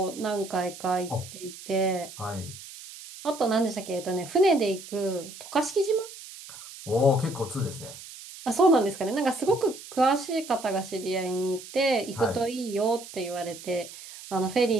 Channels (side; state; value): right; noise; hiss, 15 dB below the sound